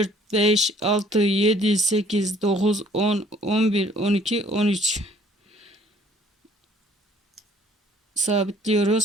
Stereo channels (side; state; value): both; normal; correlation 0.58